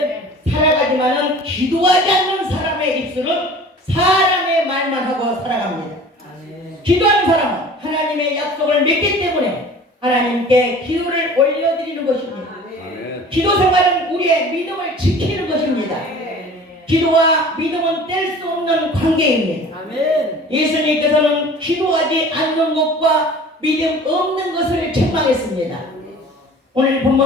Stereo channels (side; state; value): both; normal; correlation 0.44